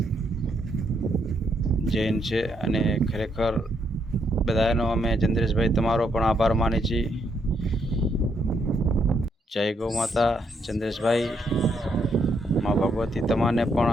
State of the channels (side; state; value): both; normal; correlation 0.75